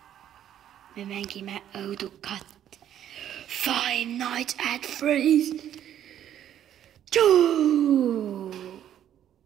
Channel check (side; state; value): left; quieter; 10.7 dB